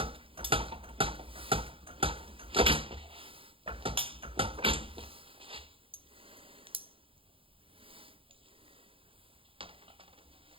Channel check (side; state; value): left; late; 0.26 ms